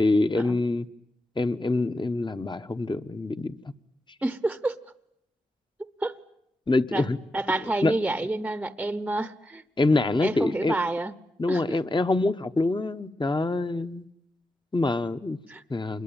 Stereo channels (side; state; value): both; normal; correlation 0.88